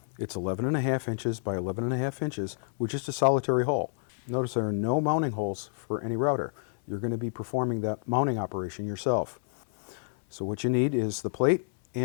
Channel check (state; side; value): silent; right; 59 dB below the other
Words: It's 11.5 inches by 11.5 inches with just a solitary hole. Notice there are no mounting holes for any router. You're going to be performing that mounting operation yourself. So what you need is the plate